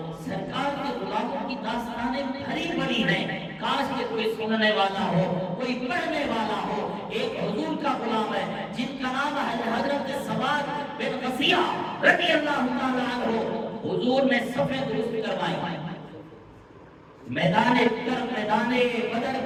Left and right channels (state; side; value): identical; both; correlation 1.00